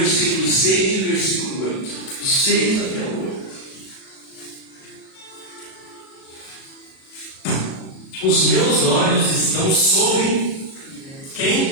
6 e o versículo 8. O 6 até o 8. Os meus olhos estão sobre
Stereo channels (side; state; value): right; late; 37 ms